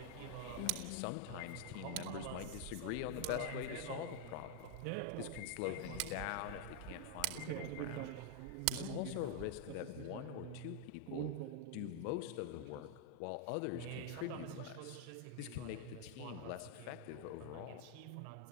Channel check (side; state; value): both; different; correlation 0.00